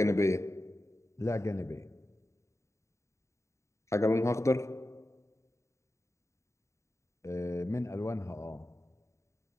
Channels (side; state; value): right; late; 0.14 ms